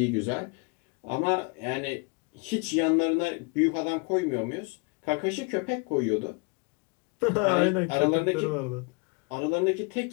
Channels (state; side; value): quieter; right; 30.7 dB